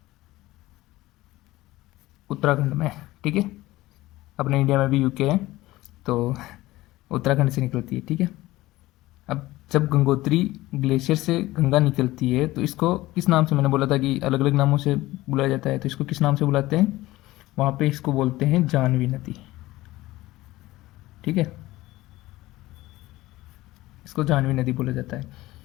उत्तराखंड में, ठीक है। अपने इंडिया में भी यूके है, तो उत्तराखंड से निकलती है, ठीक है। अब जब गंगोत्री ग्लेशियर से गंगा निकलती है तो इसको किस नाम से, मैंने बोला था कि अलग अलग नामों से बुलाया जाता है, तो इसको किस नाम से बुलाते हैं? वहाँ पे इसको बोलते हैं जानवी नदी, ठीक है। इसको जानवी नदी बोला जाता है।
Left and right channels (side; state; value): right; quieter; 17.8 dB